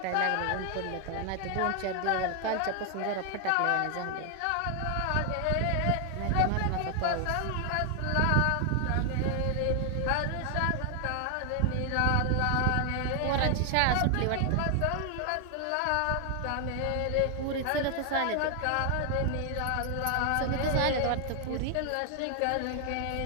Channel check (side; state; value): both; different; correlation 0.00